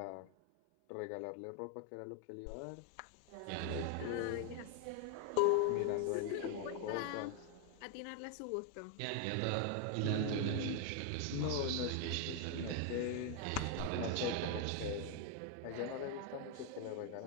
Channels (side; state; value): both; different; correlation 0.00